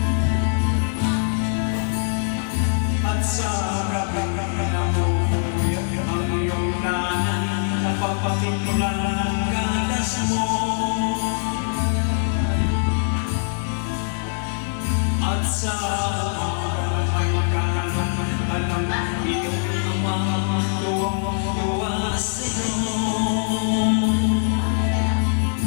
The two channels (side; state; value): right; silent; digital silence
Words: Sa gabing nabubuhay ang iyong nanay, napapatimulan ng gatas mo. At sa may kanan, alam iyong amang tuwang-tuwa sa'yo.